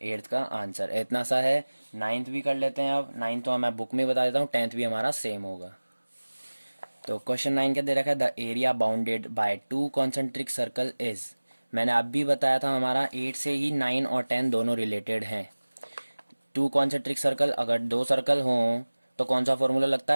8th का आंसर। इतना सा है। 9th भी कर लेते हैं। अब 9th तो मैं बुक में बता देता हूँ, 10th भी हमारा सेम होगा। तो क्वेश्चन 9 क्या दे रखा है, the area bounded by 2 concentric circle is. मैंने अब भी बताया था हमारा 8 से ही 9 और 10 दोनों रिलेटेड हैं। 2 कॉन्सेंट्रिक सर्कल, अगर दो सर्कल हों तो कौन सा फॉर्मूला लगता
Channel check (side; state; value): both; inverted; correlation -1.00